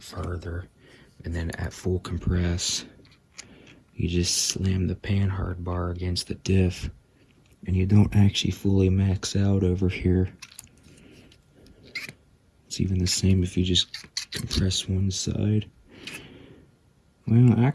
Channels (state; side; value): identical; both; correlation 1.00